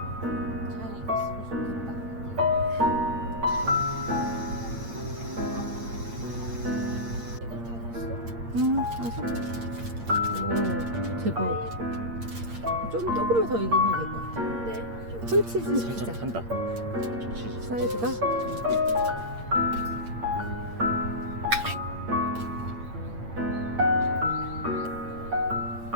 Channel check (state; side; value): late; left; 8.7 ms